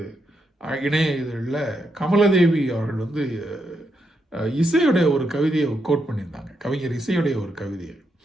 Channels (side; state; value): both; normal; correlation 0.81